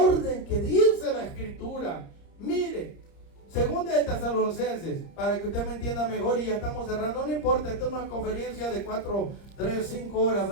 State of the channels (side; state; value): right; late; 30 ms